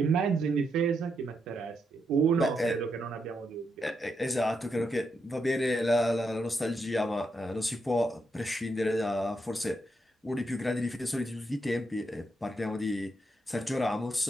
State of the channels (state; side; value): normal; both; correlation 0.82